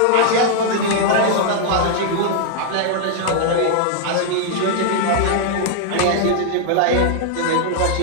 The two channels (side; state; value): both; different; correlation 0.00